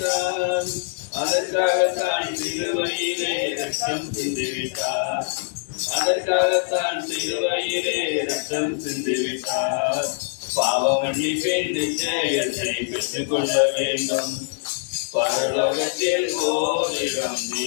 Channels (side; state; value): right; silent; digital silence